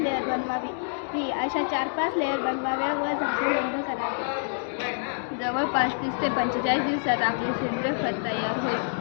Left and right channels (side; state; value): right; silent; digital silence